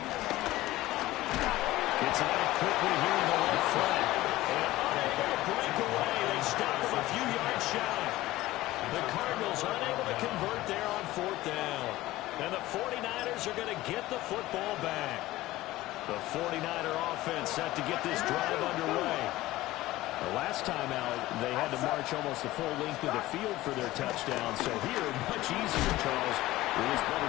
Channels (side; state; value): right; quieter; 17.1 dB